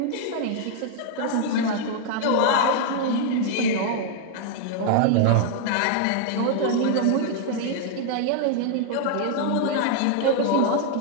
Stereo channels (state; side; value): different; both; correlation 0.00